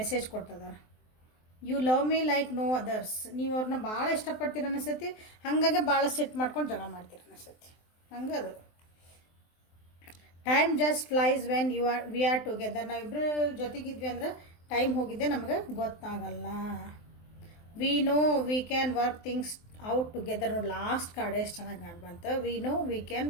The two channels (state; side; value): late; right; 23 ms